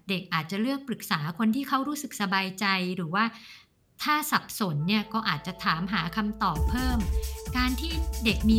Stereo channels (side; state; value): both; identical; correlation 1.00